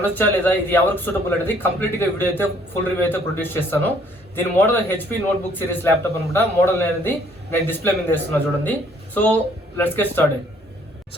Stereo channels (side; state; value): both; normal; correlation 0.62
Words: లేదా, ఇది ఎవరికి సూటబుల్ అనేది కంప్లీట్ గా వీడియో అయితే ఫుల్ రివ్యూ అయితే ప్రొడ్యూస్ చేస్తాను. దీని model HP notebook series laptop అనమాట. మోడల్ అనేది నేను డిస్ప్లే మీద వేస్తున్నా చూడండి. So let's get started.